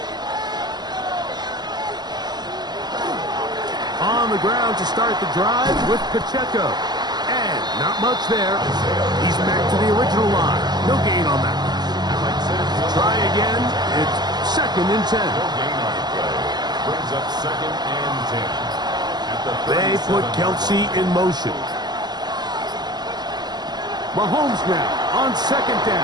On the ground to start the drive with Pacheco. And not much there. He's back to the original line. No gain on that. Try again. It's 2nd and 10. No gain on the play. Brings up 2nd and 10. At the They put 37-yard Kelsey line. in motion. Mahomes now on 2nd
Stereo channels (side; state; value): left; late; 0.20 ms